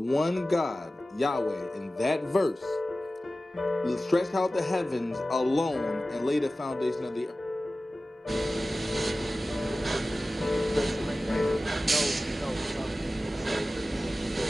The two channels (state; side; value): normal; both; correlation 0.96